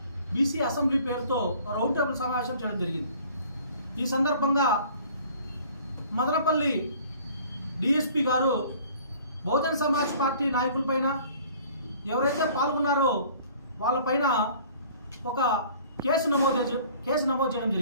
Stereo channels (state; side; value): inverted; both; correlation -0.51